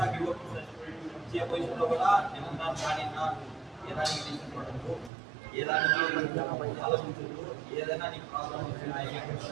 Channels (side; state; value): left; drops out; at 5.1 s